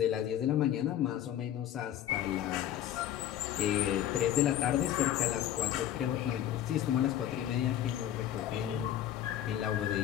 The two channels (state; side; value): quieter; right; 11.4 dB